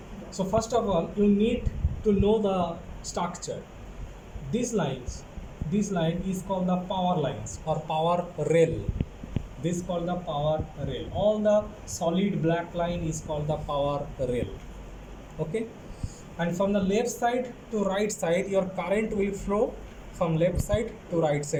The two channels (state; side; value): identical; both; correlation 1.00